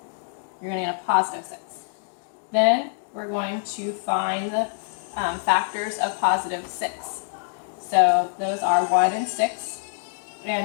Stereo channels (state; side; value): silent; right; digital silence